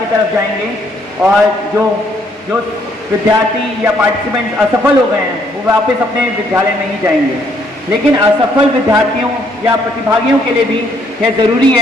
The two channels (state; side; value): normal; both; correlation 0.68